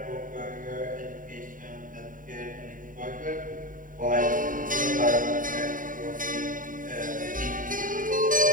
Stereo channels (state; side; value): late; left; 0.39 ms